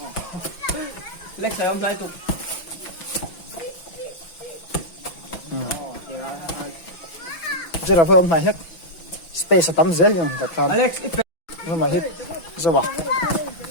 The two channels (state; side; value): late; right; 6.0 ms